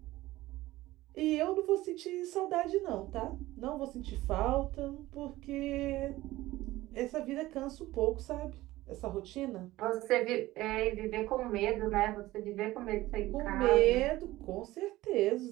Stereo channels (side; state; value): left; quieter; 17.3 dB